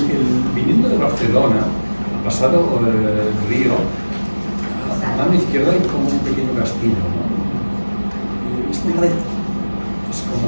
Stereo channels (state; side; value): inverted; both; correlation -1.00